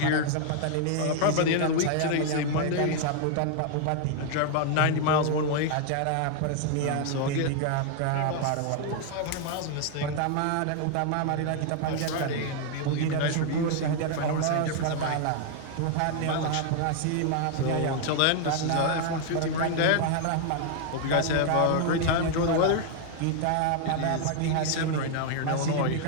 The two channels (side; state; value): both; different; correlation 0.00